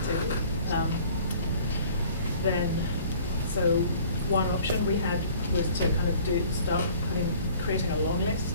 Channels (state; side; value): inverted; both; correlation -0.51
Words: table, then so one option we had was to kind of start creating a long